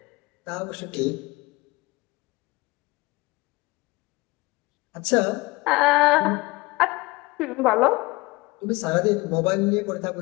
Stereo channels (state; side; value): quieter; right; 22.9 dB